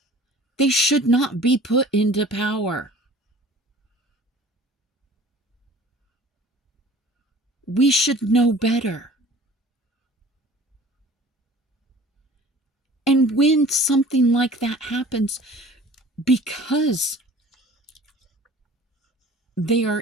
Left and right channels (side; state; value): both; normal; correlation 0.46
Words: They should not be put into power. We should know better. And when something like that happens, because they